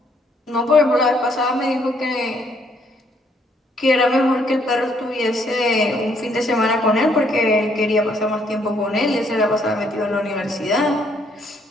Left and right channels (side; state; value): both; normal; correlation 0.68